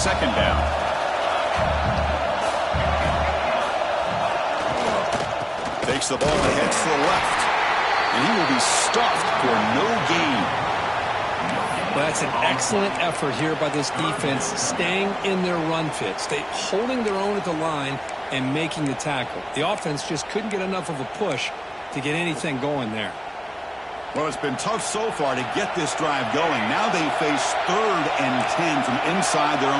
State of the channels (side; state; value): both; identical; correlation 1.00